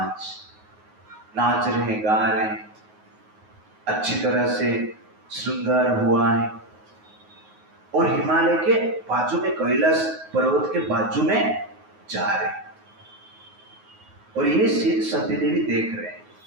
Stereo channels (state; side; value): late; left; 9.4 ms